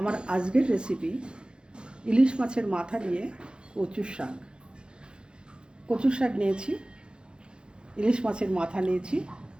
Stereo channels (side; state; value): left; late; 0.051 ms